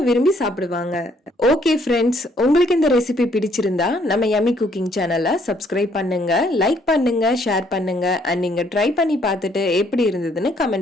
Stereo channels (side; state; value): both; normal; correlation 0.67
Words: விரும்பி சாப்பிடுவாங்க. ஓகே ஃப்ரெண்ட்ஸ், உங்களுக்கு இந்த ரெசிபி பிடிச்சிருந்தா நம்ம யம்மி குக்கிங் சேனலை சப்ஸ்கிரைப் பண்ணுங்க, லைக் பண்ணுங்க, ஷேர் பண்ணுங்க. அண்ட் நீங்க ட்ரை பண்ணி பார்த்துட்டு எப்படி இருந்ததுன்னு